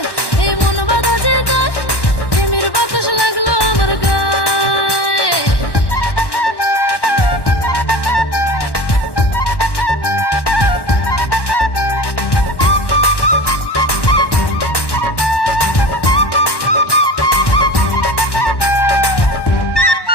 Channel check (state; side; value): late; right; 1.1 ms